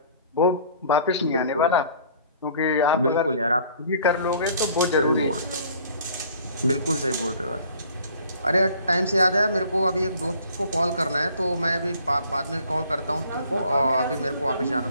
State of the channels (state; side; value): inverted; both; correlation -0.54